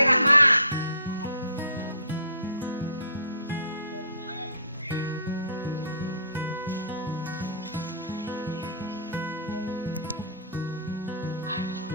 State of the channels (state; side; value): inverted; both; correlation -0.50